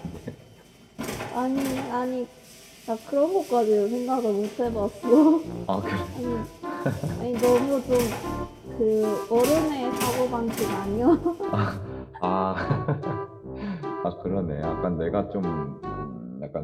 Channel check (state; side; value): identical; both; correlation 1.00